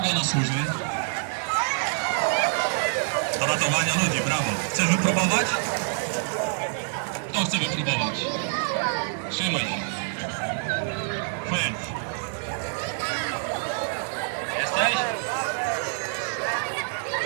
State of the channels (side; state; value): left; silent; digital silence